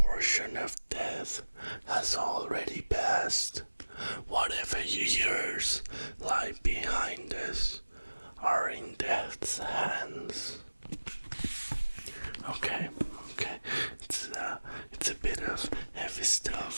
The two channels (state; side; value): inverted; both; correlation -1.00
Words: of death has already passed. Whatever years lie behind us are in death's hands. Okay. It's a bit of heavy